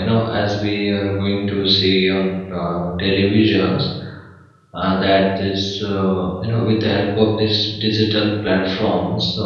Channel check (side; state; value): both; identical; correlation 1.00